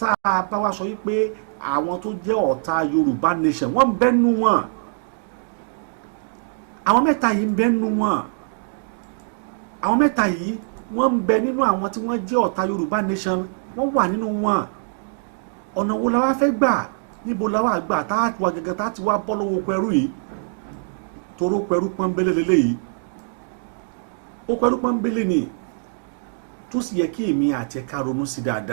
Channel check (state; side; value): silent; left; digital silence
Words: a bá wá sọ wípé àwọn tó jẹ́ ọ̀tá Yorùbá nation wọ́n ń bẹ́nu wọn, àwọn mẹ́ta yìí ń bẹ́nu wọn, àwọn mẹ́ta yìí wọ́n ń bẹ nínú àwọn tí wọ́n jẹ́ ọ̀tá Yorùbá nation, wọ́n wà nínú wọn. Ọ̀nà wo la wá fẹ́ gbà? Níbo la wá gbà tá a wà gẹ́gẹ́ tá a ti wá bọ́ lọ́wọ́ pẹ̀rú yìí? Toró pẹ̀rú pọ́nbélé lélẹ́yìí, ó pẹ̀rú pọ́nbélé ni tó sì yẹ kí èmi àti ẹ̀ka ronú sí